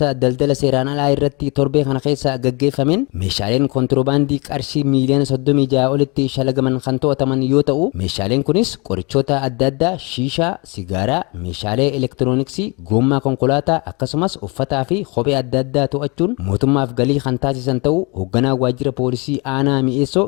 daldala seeraan alaa irratti torbee kana keessa gaggeeffameen meeshaaleen kontirobaandii qarshii miiliyoona 36 olitti shalagaman kan to'ataman yoo ta'u meeshaaleen kunis qorichoota adda addaa shiishaa sigaaraa meeshaalee elektirooniksii goommaa konkolaataa akkasumas uffataa fi kophee adda addaa to'achuun mootummaaf galii kan taasisan ta'uu hoogganaa waajjira poolisii aanaa mi'eessoo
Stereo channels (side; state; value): right; quieter; 29.1 dB